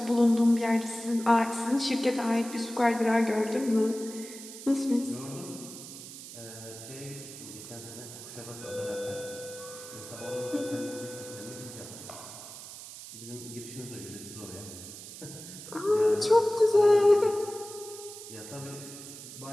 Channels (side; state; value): right; noise; hiss, 13 dB below the sound